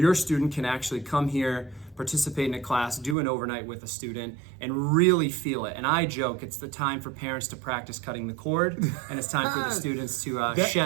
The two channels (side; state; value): left; drops out; at 3.2 s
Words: student can actually come here, participate in a class, do an overnight with a student, and really feel it. And I joke, it's the time for parents to practice cutting the cord, and it's time for the students to